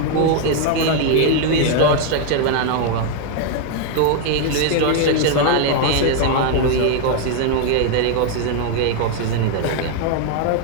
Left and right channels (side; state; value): both; different; correlation 0.00